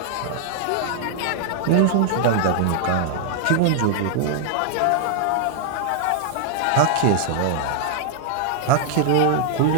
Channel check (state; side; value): different; both; correlation 0.00